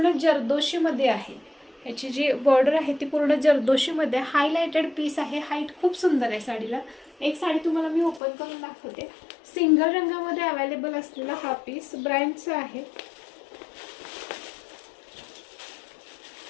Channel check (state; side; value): drops out; right; at 8.2 s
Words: जरदोशीमध्ये आहे. याची जी बॉर्डर आहे ती पूर्ण जरदोशीमध्ये हायलाइटेड पीस आहे. हाईट खूप सुंदर आहे साडीला. एक साडी तुम्हाला मी ओपन करून दाखवते. सिंगल रंगामध्ये अवेलेबल असलेला हा पीस ब्रँडचा आहे.